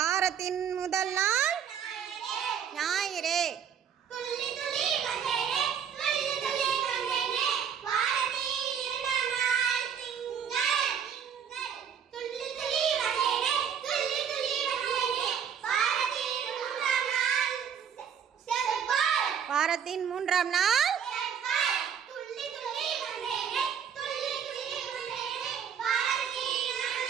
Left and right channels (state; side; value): quieter; left; 8.0 dB